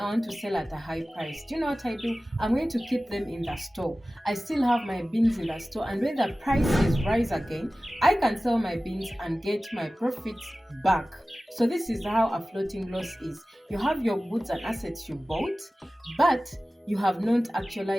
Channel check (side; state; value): both; normal; correlation 0.96